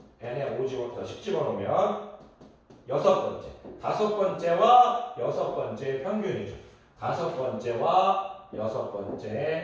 n에 10 집어넣으면 6번째. 5번째와 6번째의 평균이죠. 5번째와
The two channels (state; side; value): identical; both; correlation 1.00